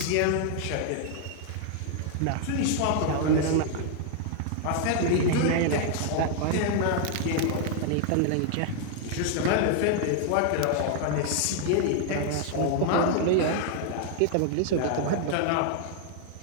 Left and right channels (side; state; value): both; different; correlation 0.00